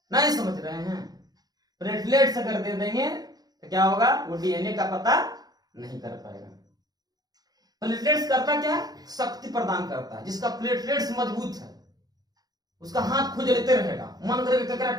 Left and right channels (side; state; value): left; late; 0.19 ms